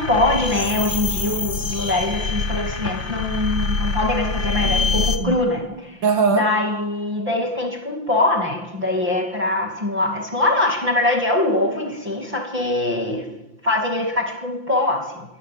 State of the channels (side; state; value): left; late; 5.8 ms